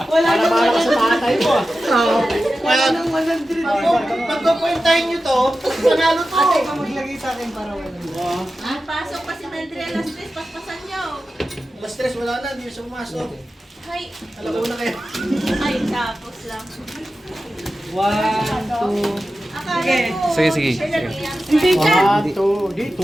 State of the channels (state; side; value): normal; both; correlation 0.93